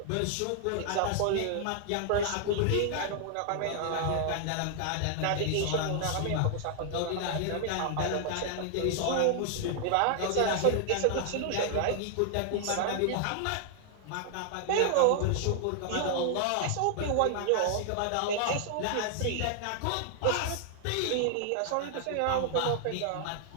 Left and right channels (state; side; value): different; both; correlation 0.00